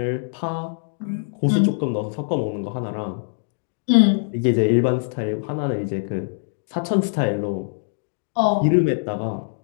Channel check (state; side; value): silent; right; digital silence